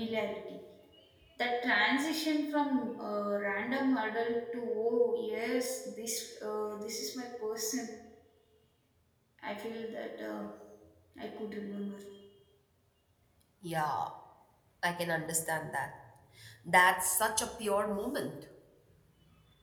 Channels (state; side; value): identical; both; correlation 1.00